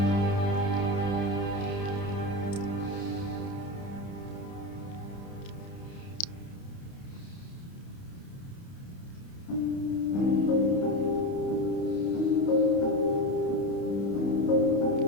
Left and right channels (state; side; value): late; right; 30 ms